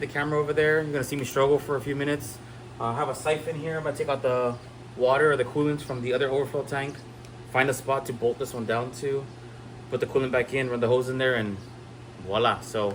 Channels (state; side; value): identical; both; correlation 1.00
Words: the camera over there. You're gonna see me struggle for a few minutes. I have a siphon here. I'm gonna take out the water or the coolant from the other overflow tank, find a spot to bolt this one down to, put the coolant back in, run the hose in there, and voila. So